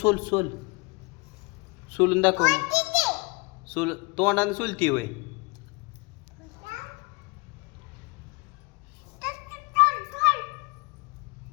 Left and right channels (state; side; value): quieter; right; 27.2 dB